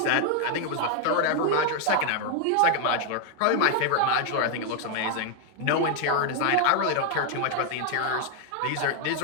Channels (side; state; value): both; different; correlation 0.00